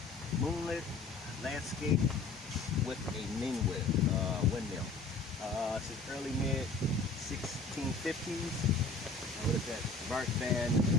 moonlit landscape with a windmill. It's the early mid 1650s. What is that? Bart van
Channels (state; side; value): quieter; right; 3.7 dB